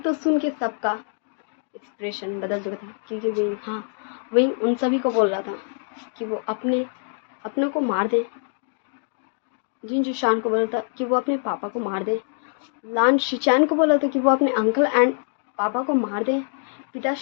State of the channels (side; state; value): right; silent; 59 dB below the other